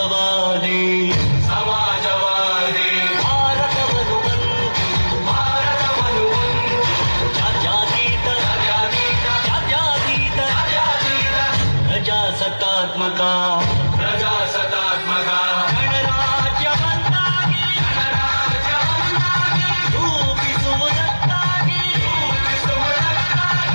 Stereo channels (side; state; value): both; inverted; correlation -1.00